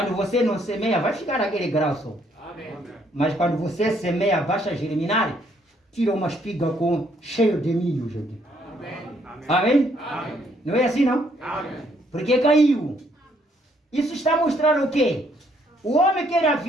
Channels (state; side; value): normal; both; correlation 0.69